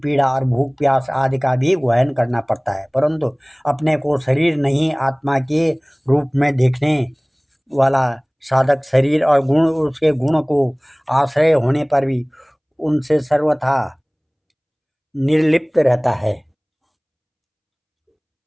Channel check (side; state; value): both; identical; correlation 1.00